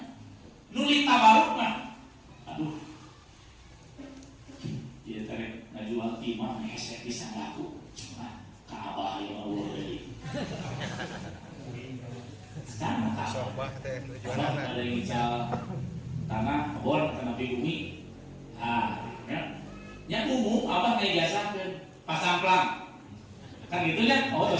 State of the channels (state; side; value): identical; both; correlation 1.00